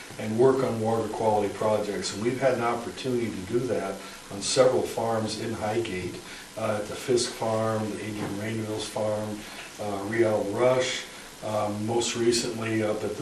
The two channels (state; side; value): identical; both; correlation 1.00